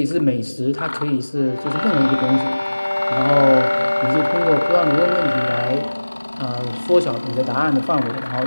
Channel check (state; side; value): inverted; both; correlation -1.00